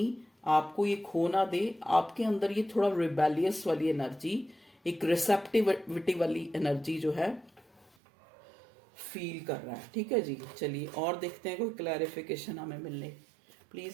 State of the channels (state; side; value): drops out; left; at 7.9 s